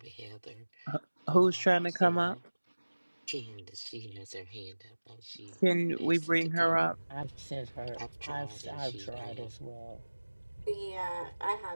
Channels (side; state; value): both; inverted; correlation -1.00